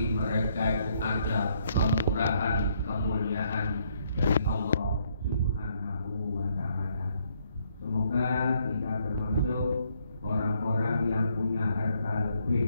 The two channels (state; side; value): inverted; both; correlation -0.71